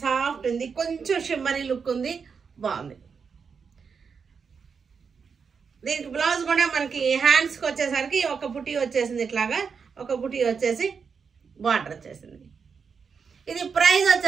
సాఫ్ట్ ఉంది, కొంచెం షిమ్మరీ లుక్ ఉంది, బాగుంది. దీనికి బ్లౌజ్ కూడా మనకి హ్యాండ్స్కి వచ్చేసరికి ఒక బుటీ వచ్చేసింది, ఇట్లాగా ఒక బుటీ వచ్చేసి బార్డర్ వచ్చేసింది. ఇది ప్రైస్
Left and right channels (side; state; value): left; quieter; 5.9 dB